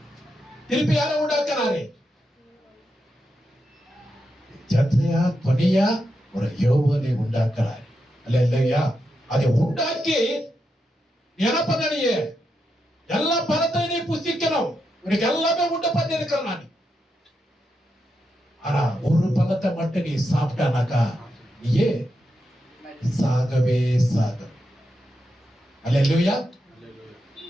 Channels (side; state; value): both; normal; correlation 0.85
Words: திருப்பி யாரை உண்டாக்குனாரு? ஜத்ரியா துணியா ஒரு யோவானை உண்டாக்குறாரு. அல்லேலூயா. அதை உண்டாக்கி என்ன பண்ண? நீ எல்லா பழத்தையும் நீ புசிக்கணும். உனக்கு எல்லாமே உண்டு பண்ணி இருக்கிறேன் நான். ஆனா ஒரு பழத்தை மட்டும் நீ சாப்பிட்டானாக்கா நீயே சாகவே சாக. அல்லேலூயா.